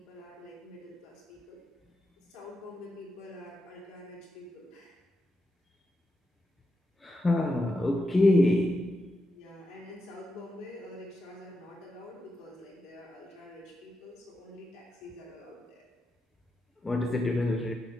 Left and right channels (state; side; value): normal; both; correlation 0.86